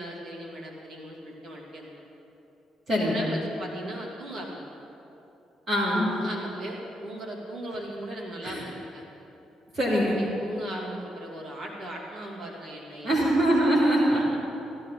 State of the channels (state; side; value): normal; both; correlation 0.81